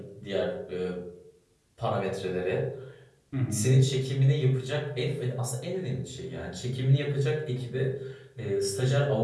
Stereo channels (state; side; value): identical; both; correlation 1.00